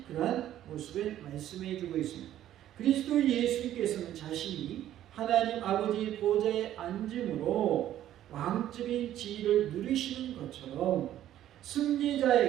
그러한 모습을 말씀해 주고 있습니다. 그리스도 예수님께서는 자신이 하나님 아버지의 보좌에 앉음으로 왕적인 지위를 누리시는 것처럼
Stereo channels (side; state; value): left; quieter; 12.2 dB